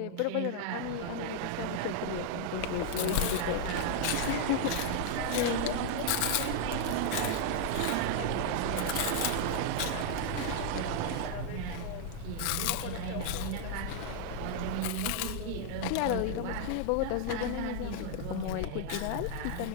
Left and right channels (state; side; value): different; both; correlation -0.01